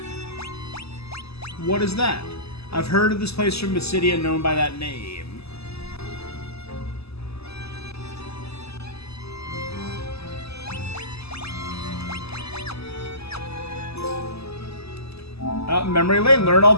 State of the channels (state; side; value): late; right; 0.79 ms